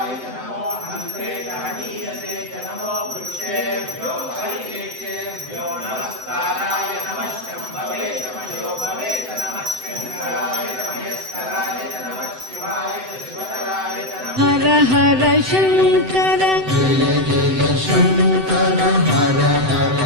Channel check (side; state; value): left; late; 7.9 ms